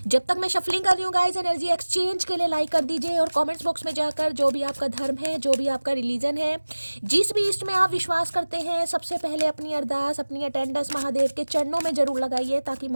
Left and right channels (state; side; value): inverted; both; correlation -1.00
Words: जब तक मैं शफलिंग कर रही हूँ गाइस, एनर्जी एक्सचेंज के लिए लाइक कर दीजिए और कमेंट्स बॉक्स में जाकर जो भी आपका धर्म है, जो भी आपका रिलीजन है, जिस भी इष्ट में आप विश्वास करते हैं, सबसे पहले अपनी अरदास, अपनी अटेंडेंस महादेव के चरणों में जरूर लगाइए, ताकि